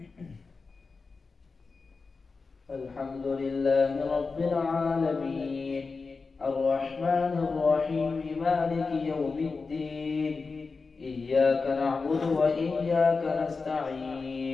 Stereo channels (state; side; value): quieter; right; 4.4 dB